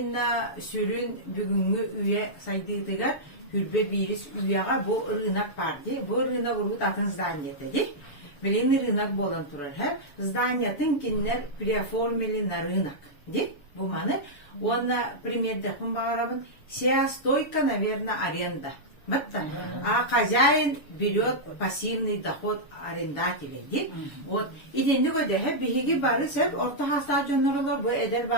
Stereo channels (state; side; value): late; right; 7.0 ms